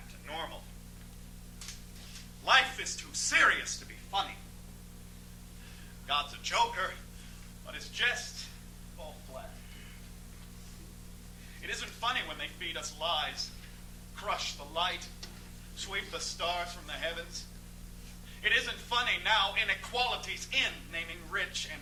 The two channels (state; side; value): identical; both; correlation 1.00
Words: to normal. Life is too serious to be funny. God's a joker, but his jests fall flat. It isn't funny when they feed us lies, crush the light, sweep the stars from the heavens. It isn't funny now inequality's in, naming rich and